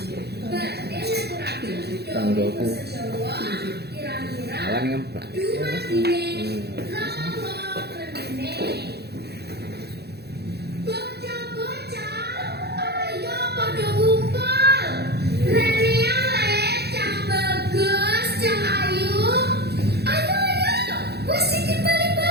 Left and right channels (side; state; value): left; late; 0.48 ms